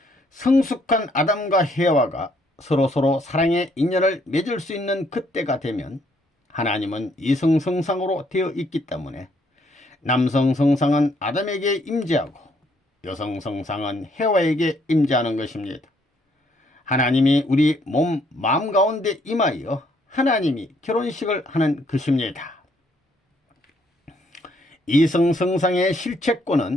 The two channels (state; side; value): normal; both; correlation 0.69